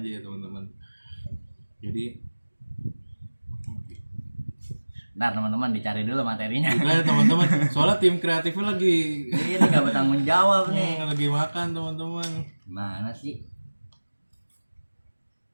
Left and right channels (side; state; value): both; inverted; correlation -1.00